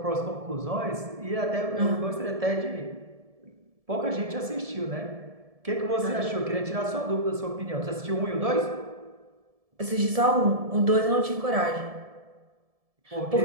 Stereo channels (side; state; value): left; late; 1.7 ms